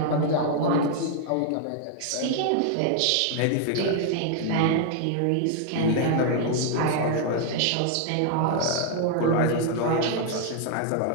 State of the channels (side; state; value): both; different; correlation 0.00